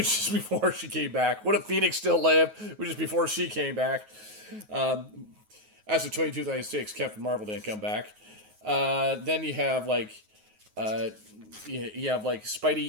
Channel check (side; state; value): left; late; 9.4 ms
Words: is before she came back? What if Phoenix still lived, which is before she came back? As of 2026, Captain Marvel didn't come back. Then you have you have like